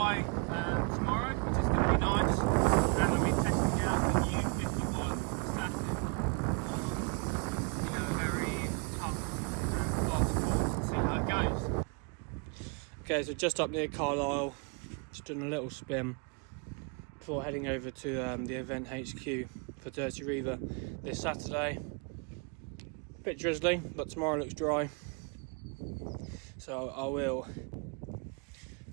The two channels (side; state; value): left; quieter; 35.6 dB